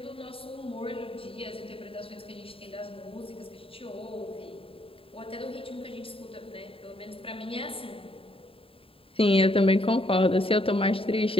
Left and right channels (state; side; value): late; right; 0.27 ms